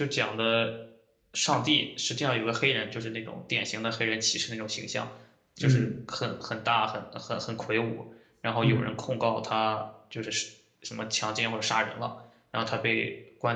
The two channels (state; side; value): identical; both; correlation 1.00